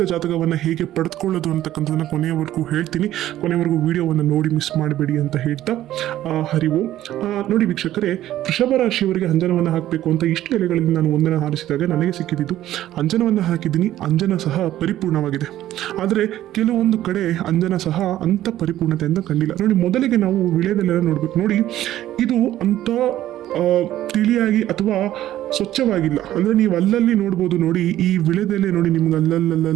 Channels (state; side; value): quieter; left; 13.4 dB